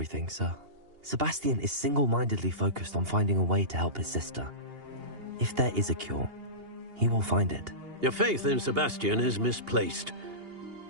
sir. Sebastian is single-mindedly focused on finding a way to help his sister. If there is a cure, he will find it. Your faith in Sebastian is misplaced.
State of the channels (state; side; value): late; left; 2.8 ms